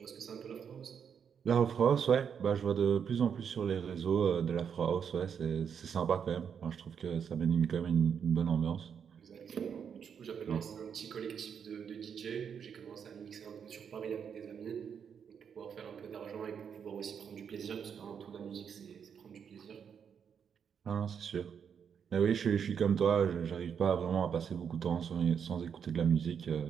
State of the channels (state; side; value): quieter; left; 7.4 dB